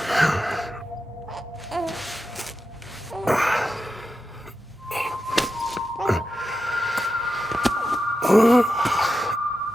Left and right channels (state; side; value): normal; both; correlation 0.89